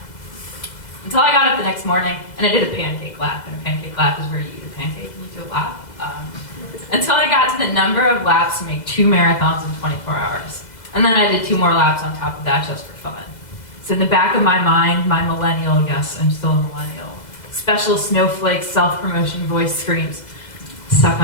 Until I got up the next morning, and I did a pancake lap, and a pancake lap is where you eat a pancake and you do a lap. Until I got to the number of laps to make 2 marathons in 24 hours. And then I did 2 more laps on top of that just for fun. So in the back of my mind, my millennial, yes, I'm still a millennial, special snowflake self-promotion voice screams, suck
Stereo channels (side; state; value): right; late; 2.0 ms